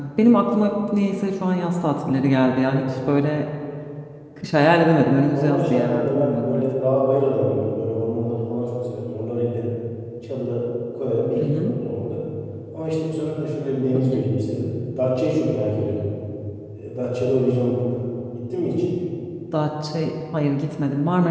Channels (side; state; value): both; identical; correlation 1.00